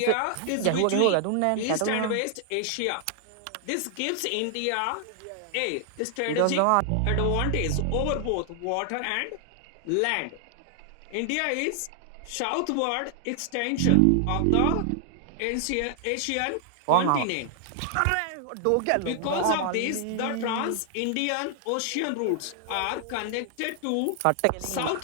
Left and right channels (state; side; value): different; both; correlation 0.00